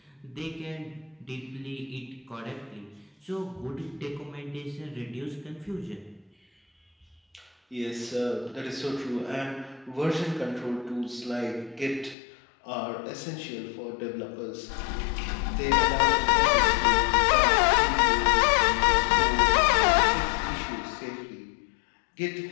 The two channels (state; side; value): drops out; right; at 12.2 s